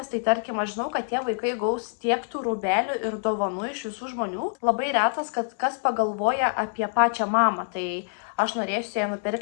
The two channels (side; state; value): right; silent; digital silence